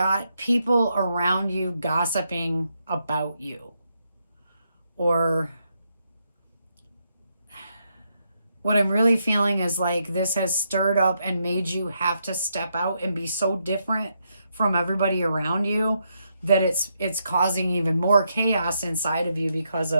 people around you gossiping about you. Or what I'm really feeling is like this has stirred up and made you have to step out and be so different from everybody around you that it's causing even more chaos inside of you because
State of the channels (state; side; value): inverted; both; correlation -0.79